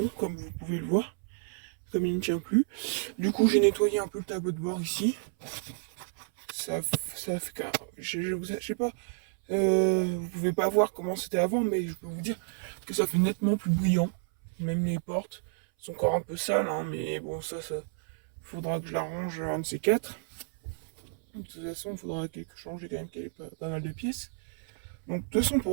comme vous pouvez le voir, comme il ne tient plus. Du coup j'ai nettoyé un peu le tableau de bord ici. Ça, ça fait que je sais pas, vous pouvez pas voir comment c'était avant, mais je peux vous dire que ça fait nettement plus brillant. Même les portes sont encore un peu sales, hein, mais bon, ça faudra que je l'arrange un de ces quatre. De toute façon, il faudra changer quand même pas mal de pièces. Donc, de toute façon,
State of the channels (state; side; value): silent; left; 57 dB below the other